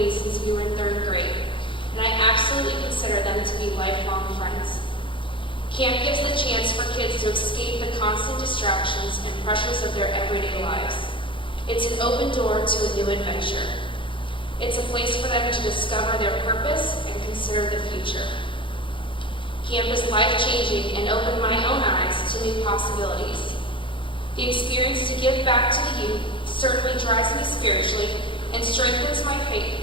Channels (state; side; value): late; right; 0.25 ms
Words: since we were in 3rd grade, and I absolutely consider them to be lifelong friends. Camp gives the chance for kids to escape the constant distractions and pressures of their everyday lives. It's an open door to a new adventure. It's a place for them to discover their purpose and consider the future. Camp is life-changing and opened my own eyes to new possibilities. The experience to give back to the youth certainly drives me spiritually and strengthens my faith,